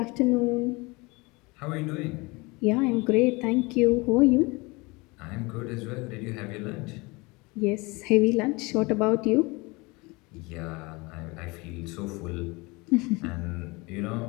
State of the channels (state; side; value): quieter; right; 25.3 dB